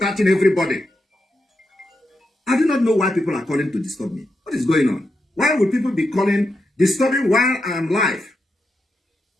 everybody. I do not know why people are calling to disturb me. What is going on? Why would people be calling, disturbing while I am live?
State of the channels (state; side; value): normal; both; correlation 0.85